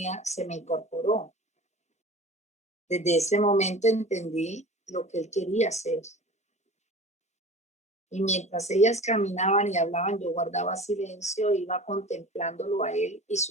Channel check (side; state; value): both; normal; correlation 0.38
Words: se me incorporó. Desde ese momento entendí lo que él quería hacer. Y mientras ellas caminaban y hablaban, yo guardaba silencio, iba contemplándolo a él y